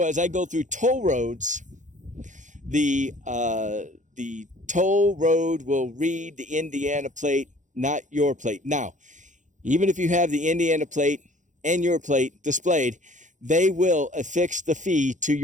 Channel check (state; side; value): late; left; 0.36 ms